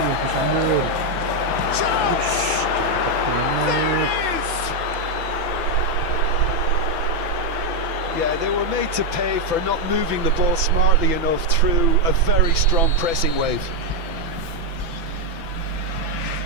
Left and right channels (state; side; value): late; left; 6.0 ms